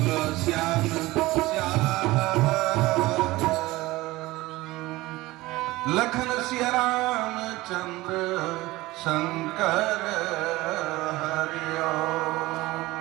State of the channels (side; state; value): left; quieter; 19.3 dB